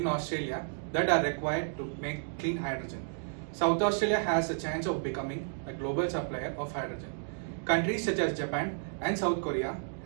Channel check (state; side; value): silent; left; digital silence